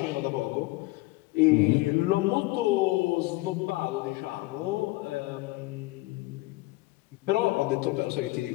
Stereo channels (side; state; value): right; quieter; 20.8 dB